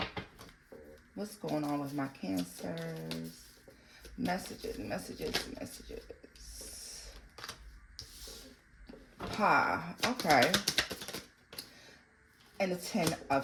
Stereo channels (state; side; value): identical; both; correlation 1.00